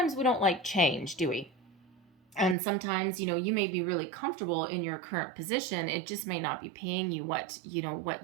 we don't like change, do we? And sometimes, you may be really comfortable in your current position. It just may not be paying you what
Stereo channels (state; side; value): drops out; left; at 2.6 s